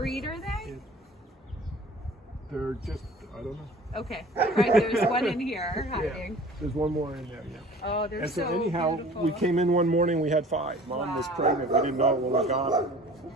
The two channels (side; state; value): both; normal; correlation 0.46